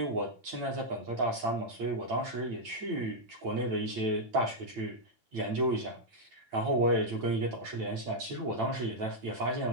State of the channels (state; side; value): late; left; 8.9 ms